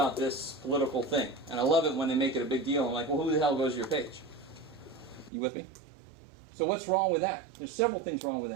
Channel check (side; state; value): left; drops out; at 5.3 s